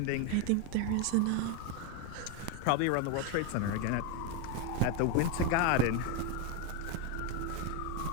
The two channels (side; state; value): both; different; correlation 0.02